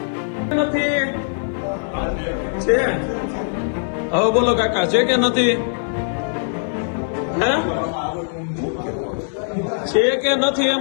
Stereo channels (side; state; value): right; silent; 65 dB below the other